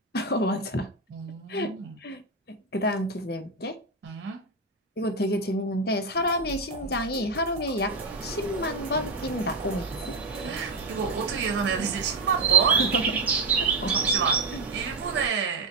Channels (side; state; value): left; quieter; 3.1 dB